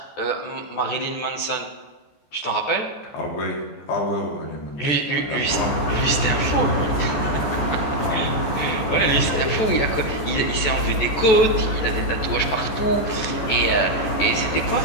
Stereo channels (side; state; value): right; late; 14 ms